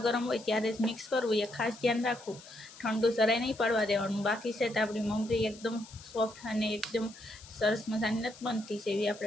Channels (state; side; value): noise; left; hiss, 19 dB below the sound